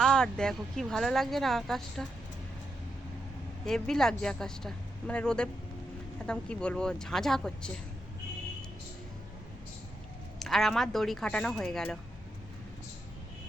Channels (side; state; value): both; normal; correlation 0.84